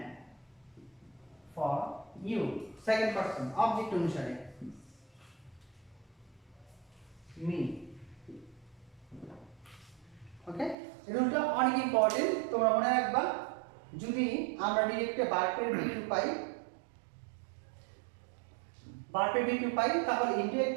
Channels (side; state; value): left; drops out; at 10.8 s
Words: for you, second person object অনুসারে me। ওকে, এই রুলটা অনেক ইম্পর্টেন্ট, তোমরা মনে রাখবা। যদি আমরা ডিরেক্টে ভার্বের V2 পাই, ভার্বের V2 পাই, তাহলে